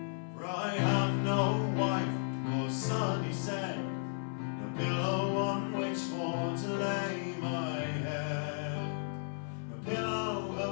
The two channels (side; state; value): right; silent; 55 dB below the other